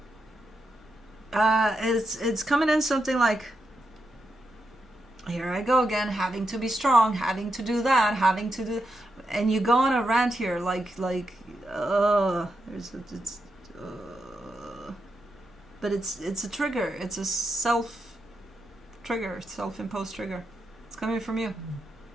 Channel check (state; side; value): normal; both; correlation 0.85